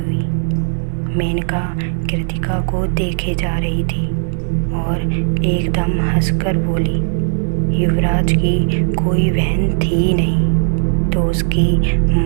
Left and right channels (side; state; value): left; silent; digital silence